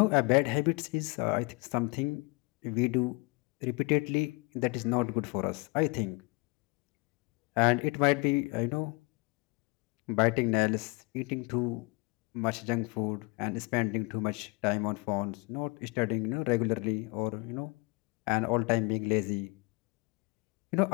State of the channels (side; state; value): right; quieter; 27.9 dB